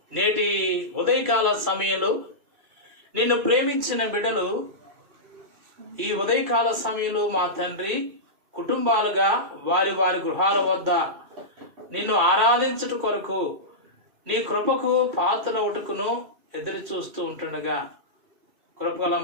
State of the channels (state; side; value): late; left; 2.6 ms